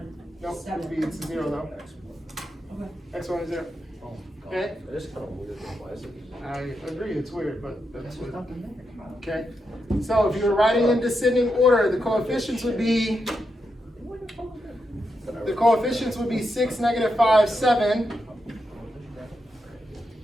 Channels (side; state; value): both; normal; correlation 0.85